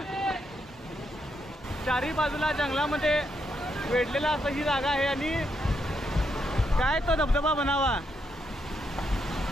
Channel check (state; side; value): normal; both; correlation 0.80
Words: चारी बाजूला जंगलामध्ये वेढलेला असं ही जागा आहे आणि काय तो धबधबा बनावा.